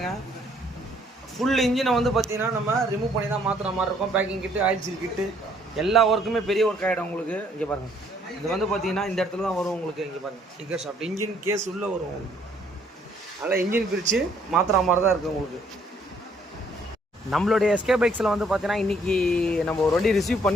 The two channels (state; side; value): normal; both; correlation 0.64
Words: ஃபுல் இன்ஜினை வந்து பார்த்திங்கன்னா நம்ம ரிமூவ் பண்ணி தான் மாற்றுற மாதிரி இருக்கும். பேக்கிங் கிட்டு, ஆயில் சீல் கிட்டு, எல்லா ஒர்க்குமே பெரிய ஒர்க் ஆகிடும் உங்களுக்கு. இங்கே பாருங்கள், இது வந்து பார்த்திங்கன்னா இந்த இடத்துல தான் வரும் உங்களுக்கு. இங்கே பாருங்கள், கிக்கர் ஷாஃப்ட் இன்ஜின் கேஸ் உள்ளே வரும் உங்களுக்கு. அதனால் இன்ஜின் பிரித்து மாற்றுற மாதிரி தான் இருக்குது உங்களுக்கு. நம்மளுடைய எஸ்கே பைக்ஸில் வந்து பார்த்திங்கன்னா இன்றைக்கி நம்ம ஒரு வண்டி ரிசீவ்